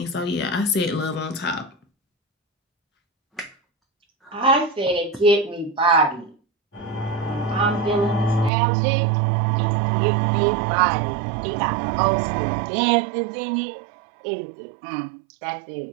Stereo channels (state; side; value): drops out; left; at 8.5 s